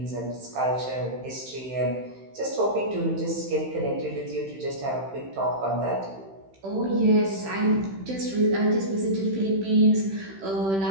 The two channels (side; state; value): left; late; 15 ms